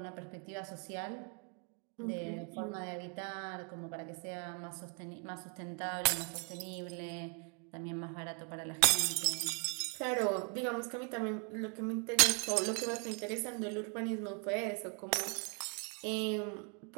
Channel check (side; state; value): left; quieter; 35.4 dB